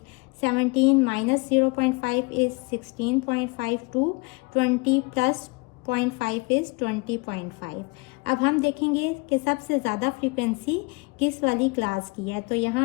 17 minus 0.5 is 16.5 to 20 plus 0.5 is 20.5। अब हम देखेंगे कि सबसे ज़्यादा फ्रीक्वेंसी किस वाली क्लास की है। तो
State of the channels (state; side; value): quieter; right; 27.4 dB